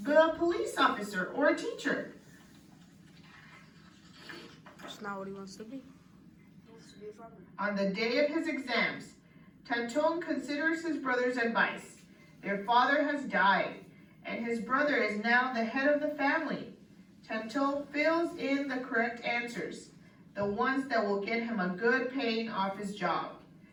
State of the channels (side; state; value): both; identical; correlation 1.00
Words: be a police officer or a teacher. That's not what he wants to be. He wants to be a farmer. On the day of his exams, Tanton considers his brother's advice. Their father has died, and his brother is now the head of the family. Tanton fills in the correct answers, the ones that will get him a good paying office job.